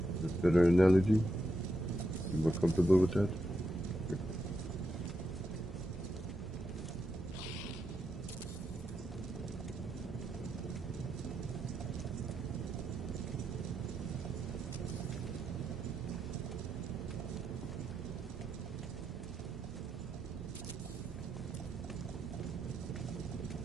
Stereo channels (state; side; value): normal; both; correlation 0.83